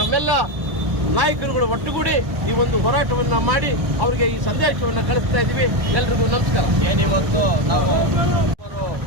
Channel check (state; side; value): late; left; 1.1 ms